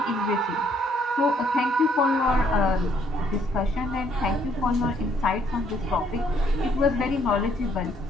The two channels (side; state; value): both; normal; correlation 0.67